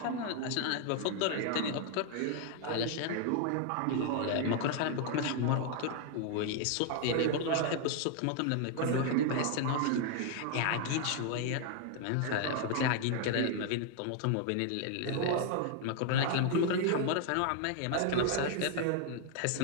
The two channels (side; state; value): both; different; correlation 0.00